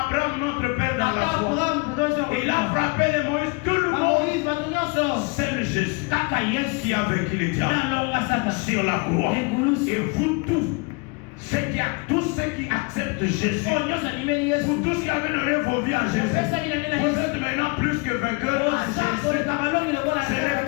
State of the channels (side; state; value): right; quieter; 29.6 dB